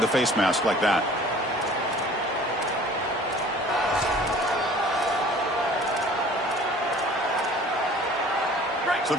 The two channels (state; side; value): normal; both; correlation 0.49